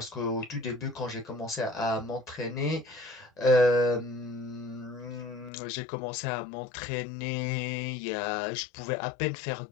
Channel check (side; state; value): right; drops out; at 5.5 s